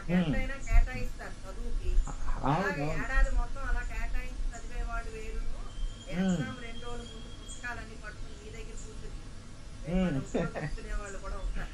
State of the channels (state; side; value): identical; both; correlation 1.00